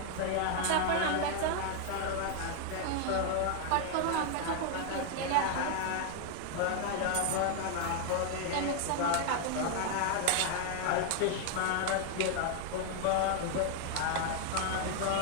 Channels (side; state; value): both; different; correlation 0.00